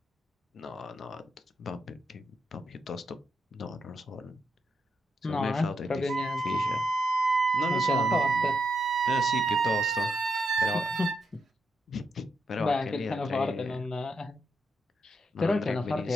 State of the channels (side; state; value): both; normal; correlation 0.81